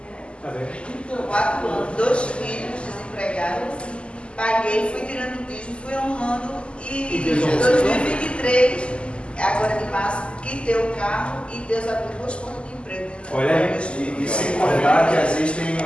4 anos, 2 filhos desempregados, paguei, fui tirando o dízimo, fui honrando e em 2023, agora de março, quitei o carro e Deus abriu 2 portas de emprego. Olha aí, e sem contar que às vezes a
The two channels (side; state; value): right; late; 0.053 ms